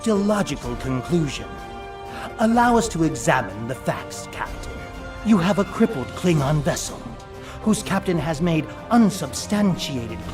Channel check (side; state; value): both; identical; correlation 1.00